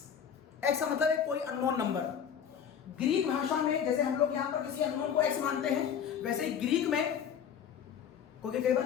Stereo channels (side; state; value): right; quieter; 8.1 dB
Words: का मतलब है कोई अननोन नंबर। ग्रीक भाषा में जैसे हम लोग यहां पर किसी अननोन को x मानते हैं, वैसे ही ग्रीक में, क्योंकि कई बार